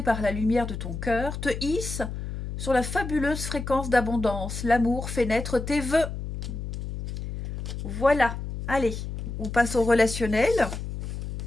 par la lumière de ton cœur, te hissent sur la fabuleuse fréquence d'abondance. L'amour fait naître tes vœux. Voilà. Allez, on passe au relationnel.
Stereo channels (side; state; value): left; noise; hum, 6 dB below the sound